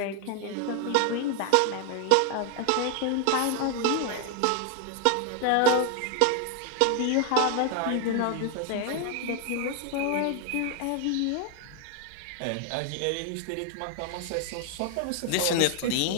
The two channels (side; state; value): both; different; correlation 0.00